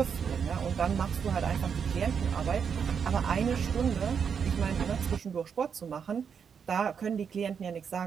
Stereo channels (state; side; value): quieter; left; 6.9 dB